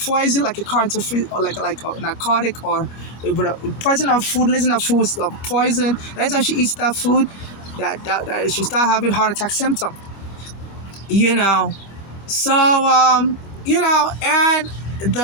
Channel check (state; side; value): late; right; 25 ms